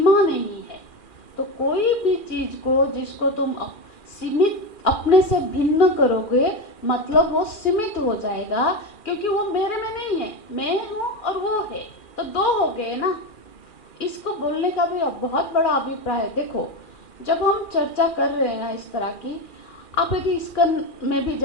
नहीं है। तो कोई भी चीज को जिसको तुम सीमित, अपने से भिन्न करोगे, मतलब वो सीमित हो जाएगा, क्योंकि वो मेरे में नहीं है, मैं हूँ और वो है, तो दो हो गए ना। इसको बोलने का भी बहुत बड़ा अभिप्राय है। देखो, जब हम चर्चा कर रहे हैं ना इस तरह की, आप यदि इस्कन में भी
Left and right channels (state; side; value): late; right; 2.4 ms